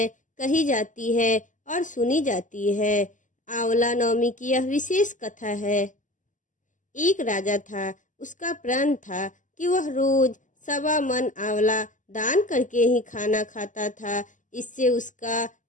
कही जाती है और सुनी जाती है। आंवला नवमी की यह विशेष कथा है। एक राजा था, उसका प्रण था कि वह रोज 1.25 मन आंवला दान करके ही खाना खाता था। इससे उसका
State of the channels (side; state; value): right; late; 0.37 ms